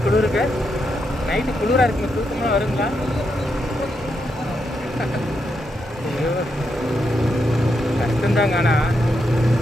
குளிருக்கு நைட்டு குளிராக இருக்குங்க தூக்கமாக வருங்களா ஐயோ கஷ்டந்தாங்க ஆனால்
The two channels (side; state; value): both; normal; correlation 0.82